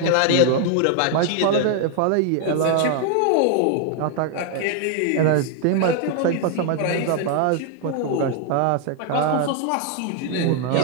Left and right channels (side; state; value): both; different; correlation 0.01